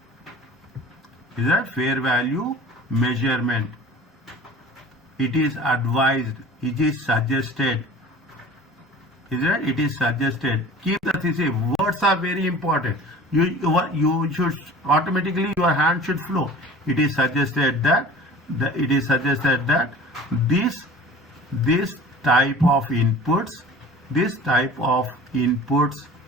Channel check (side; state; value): both; normal; correlation 0.43